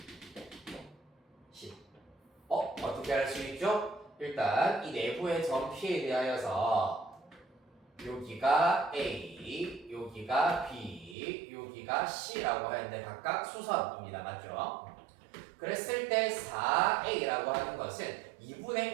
10 어떻게 할 수 있죠? 일단 이 내부의 점 P에 대하여서 여기가 A, 여기가 B, 여기가 C라고 하는데 각각 수선입니다. 맞죠? 그랬을 때 4A라고 하는 것은 2분의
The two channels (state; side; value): drops out; left; at 11.2 s